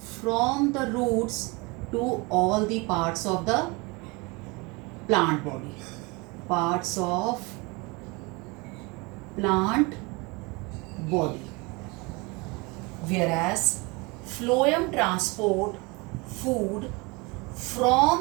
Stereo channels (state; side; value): quieter; left; 27.0 dB